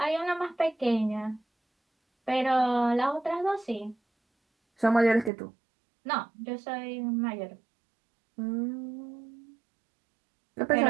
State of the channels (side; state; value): left; drops out; at 5.3 s